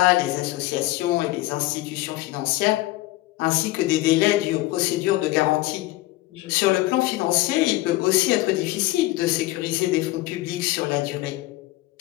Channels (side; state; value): right; quieter; 18.2 dB